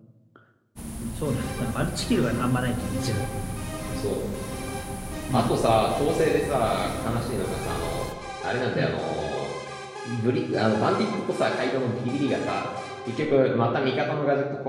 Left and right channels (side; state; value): both; identical; correlation 1.00